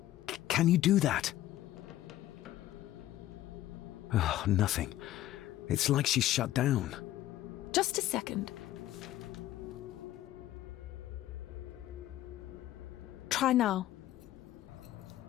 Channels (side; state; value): right; quieter; 14.0 dB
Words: Can you do that? Oh, nothing. It's like she's shut down. Just a second. Try now.